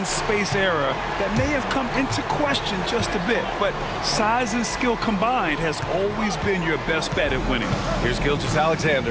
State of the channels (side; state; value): both; identical; correlation 1.00